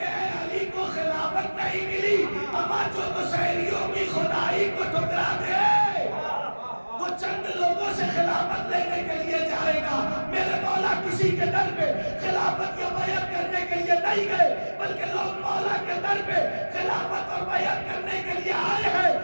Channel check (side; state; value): both; inverted; correlation -1.00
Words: نہیں ملی، اما جو مشاہریوں کی خدائی کو ٹھکرا دے وہ چند لوگوں سے خلافت لینے کے لیے جائے گا۔ میرے مولا کسی کے در پہ خلافت یا بیعت کرنے کے لیے نہیں گئے، بلکہ لوگ مولا کے در پہ خلافت اور بیعت کرنے کے لیے آئے ہیں۔